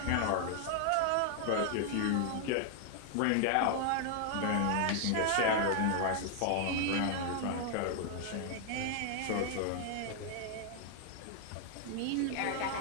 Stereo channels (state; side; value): different; both; correlation 0.00